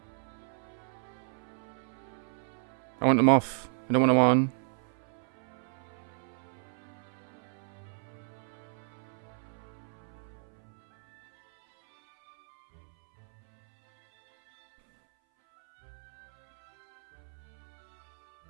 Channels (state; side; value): silent; left; 56 dB below the other